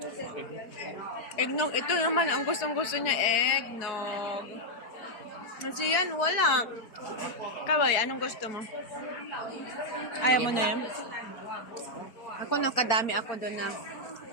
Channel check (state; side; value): late; right; 4.7 ms